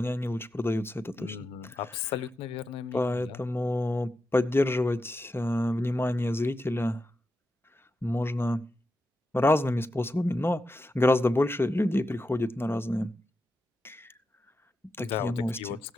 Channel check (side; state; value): both; normal; correlation 0.88